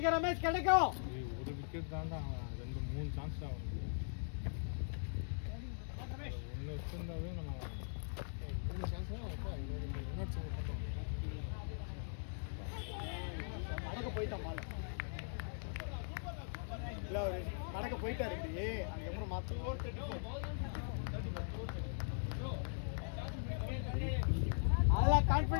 ரமேஷ் கிடைக்கும். ஒரு விக்கெட் தாண்டா, 2-3 சான்ஸ் தான் வந்து ஒன்று வச்சிருந்தாவே நம்ம 3 சான்ஸ் கடக்க போயிட்டான் மாலை. இல்லை அவர் கடக்க போயிட்டாரு. அதுக்கப்புறம் மாற்ற அதெல்லாம்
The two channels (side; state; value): right; silent; digital silence